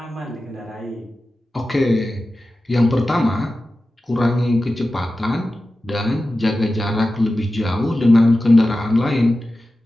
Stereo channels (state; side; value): normal; both; correlation 0.94